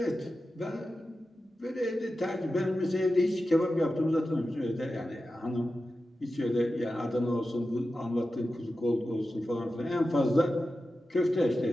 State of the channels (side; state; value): both; normal; correlation 0.92